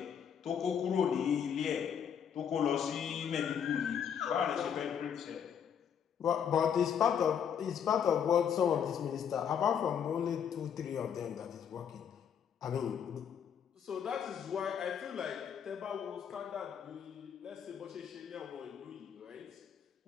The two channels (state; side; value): quieter; right; 8.1 dB